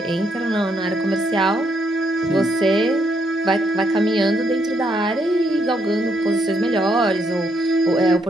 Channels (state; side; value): normal; both; correlation 0.75